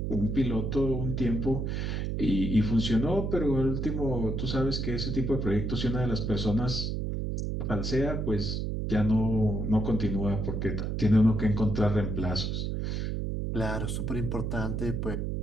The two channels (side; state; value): right; noise; hum, 1 dB below the sound